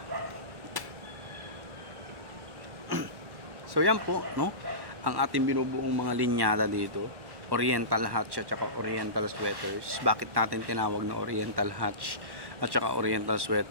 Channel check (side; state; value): left; late; 1.1 ms